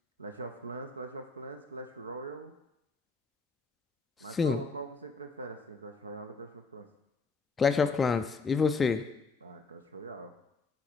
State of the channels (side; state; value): right; quieter; 4.3 dB